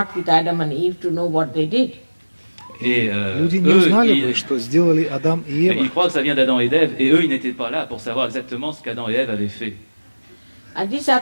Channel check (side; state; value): both; inverted; correlation -1.00